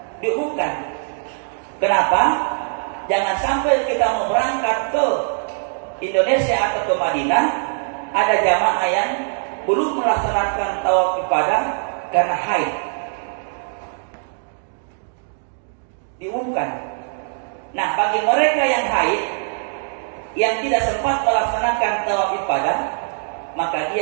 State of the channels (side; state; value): left; silent; digital silence